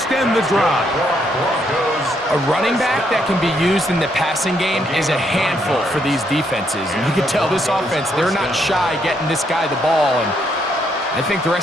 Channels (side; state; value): both; normal; correlation 0.74